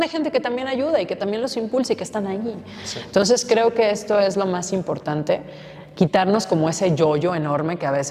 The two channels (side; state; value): both; identical; correlation 1.00